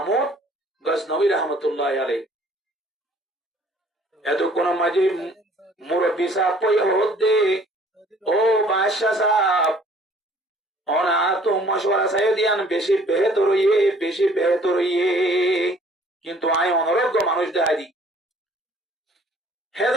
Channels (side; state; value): both; normal; correlation 0.56